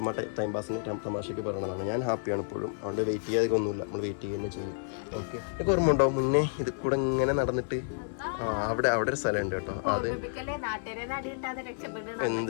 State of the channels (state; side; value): silent; right; 55 dB below the other